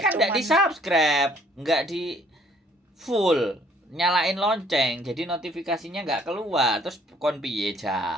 nggak di subscribe, nggak di full, nyalain lonceng, jadi notifikasinya nggak keluar. Terus kon piye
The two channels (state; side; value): normal; both; correlation 0.61